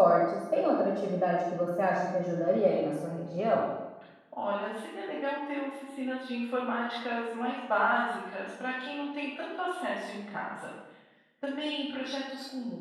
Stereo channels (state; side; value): identical; both; correlation 1.00